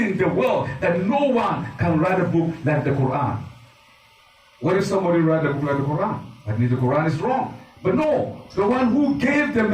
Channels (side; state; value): both; identical; correlation 1.00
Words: the world that no one can write a book like the Quran? What if somebody write a book like the Quran? That means the Quran is wrong. But no, the one who gave the